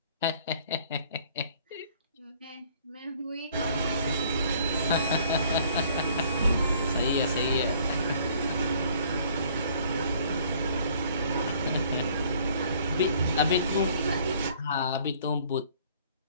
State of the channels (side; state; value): both; inverted; correlation -0.57